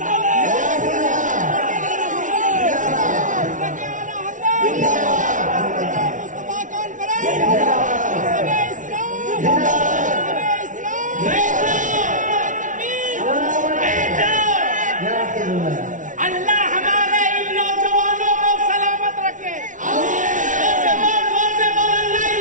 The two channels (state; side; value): late; left; 0.37 ms